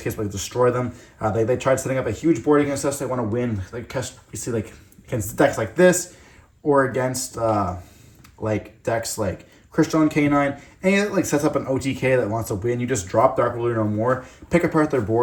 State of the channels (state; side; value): identical; both; correlation 1.00